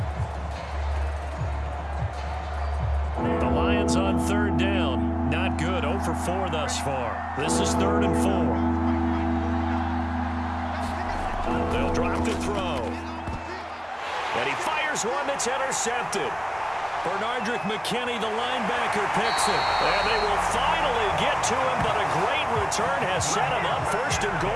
On 3rd down, not good. 0 for 4 thus far. This is 3rd and 4. They'll drop to throw. And he fires one that's intercepted. Bernardrick McKinney, the linebacker, picks it. And they will finally get to him, but a great return has set him up 1st and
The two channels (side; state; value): both; identical; correlation 1.00